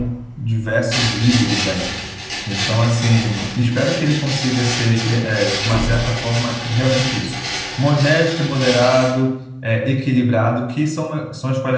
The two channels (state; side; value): identical; both; correlation 1.00